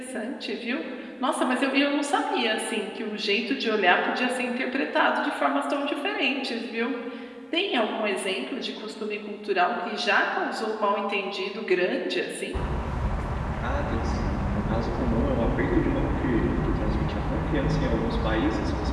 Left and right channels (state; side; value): identical; both; correlation 1.00